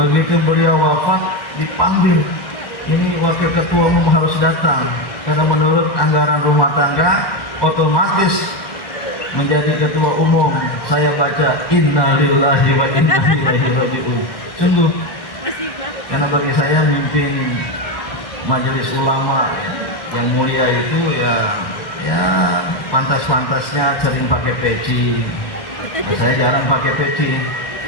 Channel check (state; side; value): late; right; 2.0 ms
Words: beliau wafat dipanggil, ini wakil ketua umum harus datang karena menurut anggaran rumah tangga otomatis menjadi ketua umum. Saya baca inna lillahi wa inna ilaihi raji'un. Sungguh, karena bagi saya memimpin majelis ulama yang mulia itu ya pantas-pantasnya sering pakai peci. Saya jarang pakai peci.